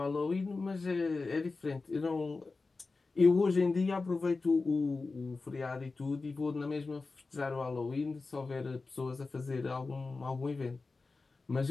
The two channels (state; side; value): quieter; right; 3.9 dB